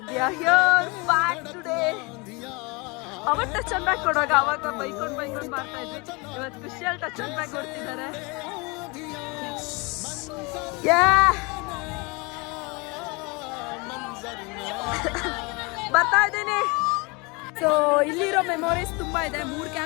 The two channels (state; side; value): quieter; right; 28.0 dB